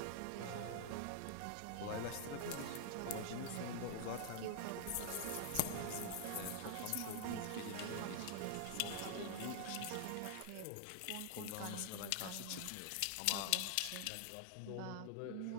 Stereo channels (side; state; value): both; different; correlation 0.00